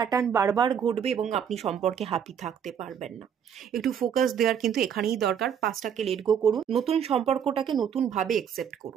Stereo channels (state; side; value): quieter; left; 8.2 dB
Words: বারবার ঘটবে এবং আপনি সম্পর্কে হ্যাপি থাকতে পারবেন না। একটু ফোকাস দেওয়ার কিন্তু এখানেই দরকার। পাস্টটাকে লেট গো করুন, নতুন সম্পর্কটাকে নতুনভাবে একসেপ্ট